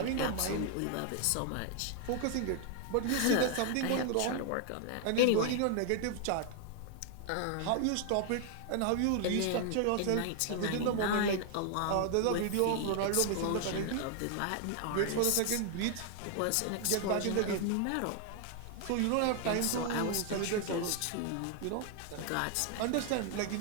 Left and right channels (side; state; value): both; different; correlation 0.00